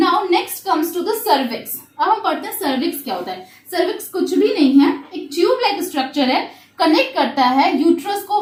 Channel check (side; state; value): both; identical; correlation 1.00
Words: next comes to the cervix. अब हम पढ़ते हैं cervix क्या होता है. cervix कुछ भी नहीं है, एक ट्यूब लाइक स्ट्रक्चर है, कनेक्ट करता है यूट्रस को